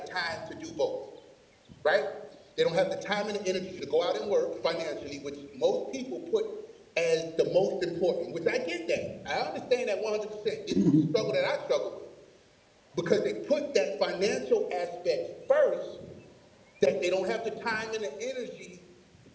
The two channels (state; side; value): identical; both; correlation 1.00